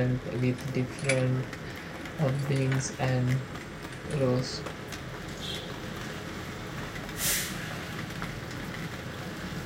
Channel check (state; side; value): identical; both; correlation 1.00